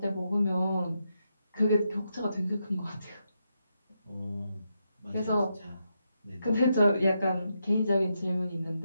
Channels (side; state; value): both; inverted; correlation -0.83